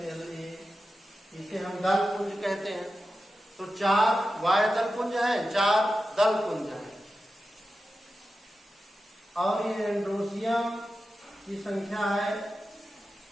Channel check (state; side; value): normal; both; correlation 0.92